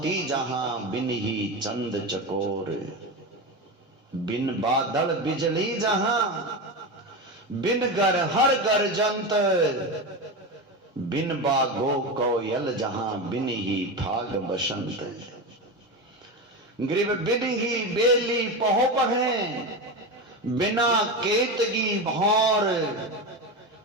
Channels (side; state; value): both; normal; correlation 0.19